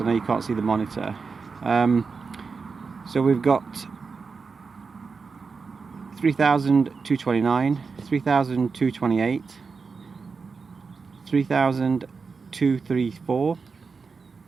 know you can't see the monitor. So we've got 3,229, 3,228, 3,234,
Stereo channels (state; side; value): quieter; left; 4.9 dB